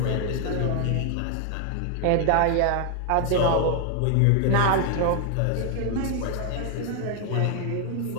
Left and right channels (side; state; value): both; different; correlation 0.00